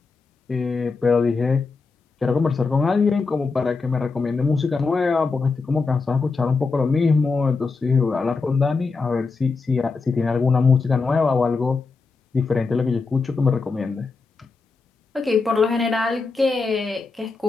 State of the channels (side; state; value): right; quieter; 4.3 dB